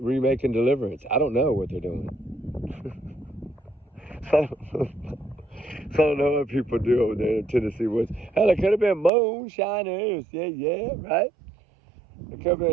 Deliverance. I don't know what they're doing. So I don't know what people do over there in Tennessee woods. Hell, it could have been moonshiners. Yeah, right? It could have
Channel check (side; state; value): left; drops out; at 9.1 s